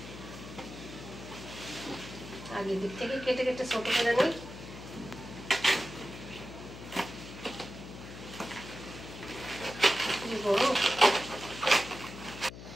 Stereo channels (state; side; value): noise; left; hum, 13 dB below the sound